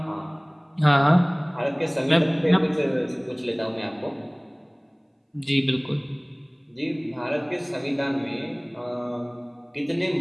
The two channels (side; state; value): both; identical; correlation 1.00